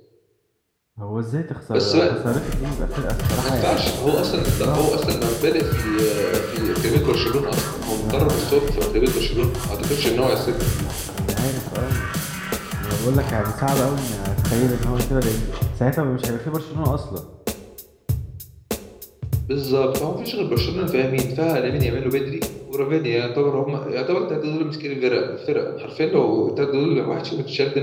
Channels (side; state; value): both; identical; correlation 1.00